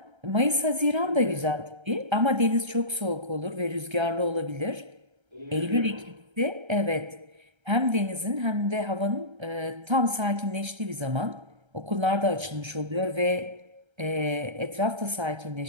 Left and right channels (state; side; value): late; left; 1.3 ms